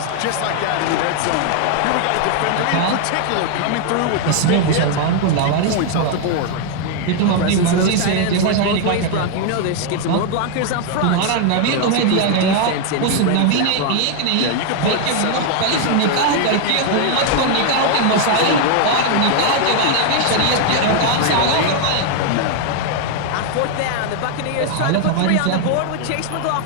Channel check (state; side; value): different; both; correlation 0.00